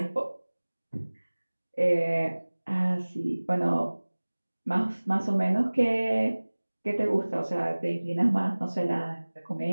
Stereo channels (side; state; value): both; inverted; correlation -1.00